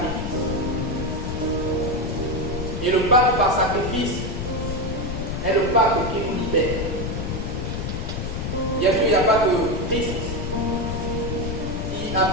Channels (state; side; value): noise; left; rumble, 3 dB below the sound